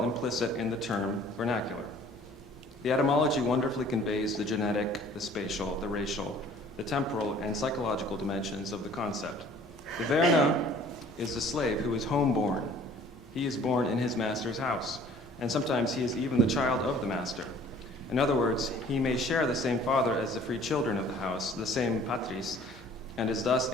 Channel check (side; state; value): both; normal; correlation 0.52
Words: implicit in the term vernacular. The etymology wonderfully conveys the genetic, the spatial, the racial, the temporal, and psychological dimensions of the concept. The verna is the slave who is home-born. He is born in his master's house, and sometimes he is even the child of the master. In other words, he may share the same father as the free children of the house, the same patris, and is thus